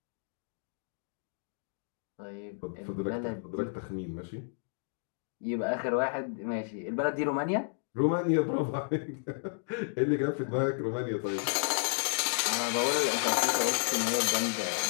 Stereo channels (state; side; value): silent; right; digital silence